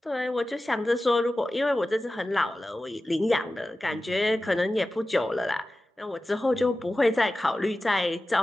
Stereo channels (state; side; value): normal; both; correlation 0.95